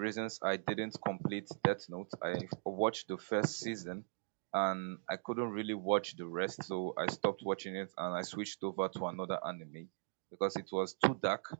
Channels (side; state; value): left; silent; digital silence